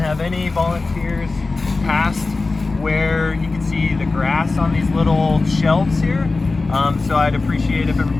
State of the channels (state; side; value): quieter; right; 3.6 dB